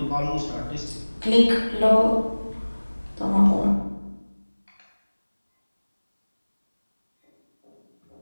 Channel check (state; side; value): inverted; both; correlation -1.00